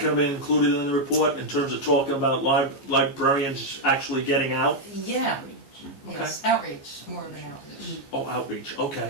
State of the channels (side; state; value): right; late; 14 ms